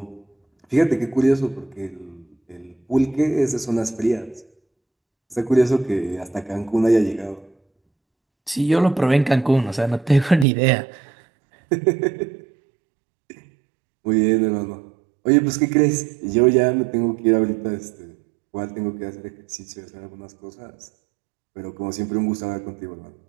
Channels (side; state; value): left; drops out; at 10.5 s